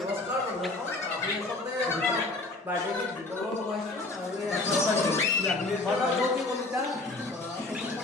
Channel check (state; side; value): quieter; right; 3.1 dB